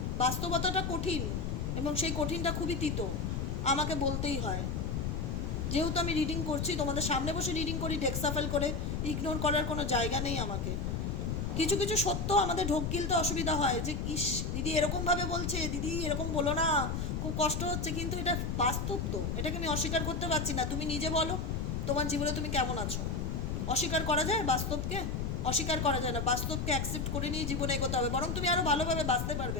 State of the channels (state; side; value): noise; left; rumble, 1 dB below the sound